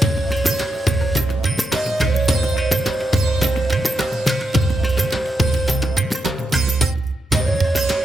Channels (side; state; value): both; normal; correlation 0.84